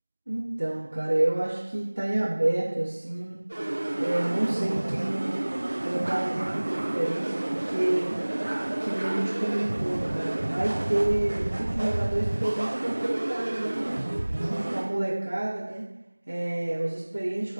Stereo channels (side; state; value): both; inverted; correlation -1.00